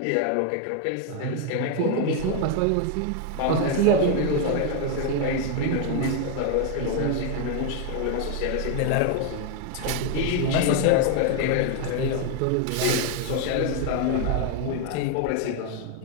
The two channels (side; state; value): both; different; correlation 0.00